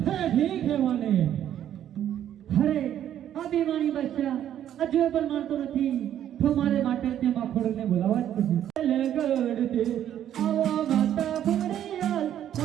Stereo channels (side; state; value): left; quieter; 10.7 dB